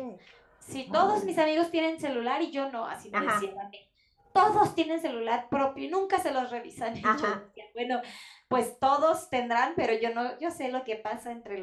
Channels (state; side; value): identical; both; correlation 1.00